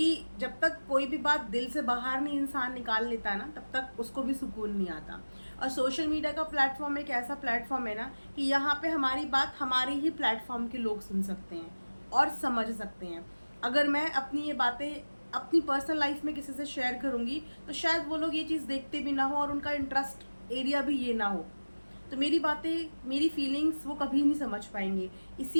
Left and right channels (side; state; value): both; inverted; correlation -1.00